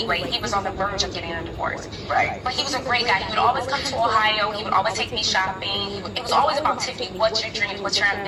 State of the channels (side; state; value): both; identical; correlation 1.00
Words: He was on the verge of getting a divorce. Right. But he was a great guy. He would always come to Ohio. He would always take me shopping. It was always about Tiffany, what's your dreams, what's your